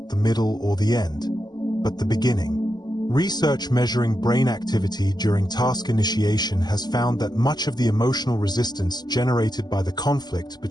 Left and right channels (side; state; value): right; late; 0.20 ms